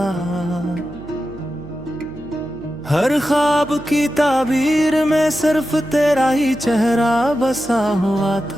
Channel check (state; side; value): noise; right; hum, 18 dB below the sound